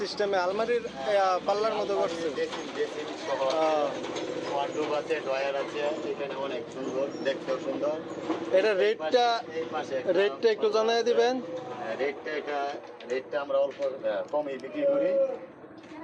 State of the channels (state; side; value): identical; both; correlation 1.00